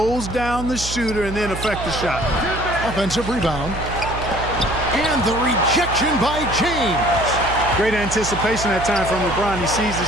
down the shooter, and then affect the shot. Offensive rebound. And the rejection by James. Great anticipation that time from LeBron. He sees the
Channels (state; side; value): noise; right; hum, 8 dB below the sound